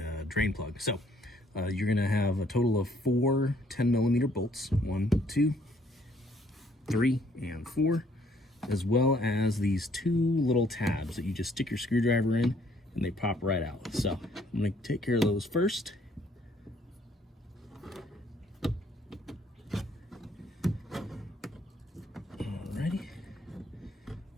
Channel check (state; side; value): normal; both; correlation 0.64